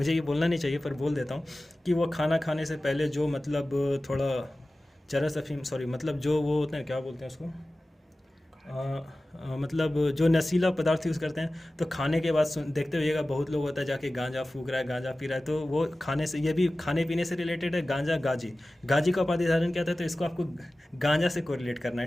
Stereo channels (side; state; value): both; normal; correlation 0.96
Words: ये बोलना नहीं चाहिए पर बोल देता हूँ, कि वो खाना खाने से पहले जो मतलब थोड़ा चरस अफीम मतलब जो वो होते हैं, क्या बोलते हैं उसको, मतलब जो नशीला पदार्थ यूज़ करते हैं, तो खाने के बाद देखते होइएगा बहुत लोग होता है जाके गांजा फूक रहा है, गांजा पी रहा है। तो वो खाने से, ये भी खाने पीने से रिलेटेड है। गांजा गाजी का उपाधि धारण क्या था? तो इसको आपको गांजा से कोरिलेट करना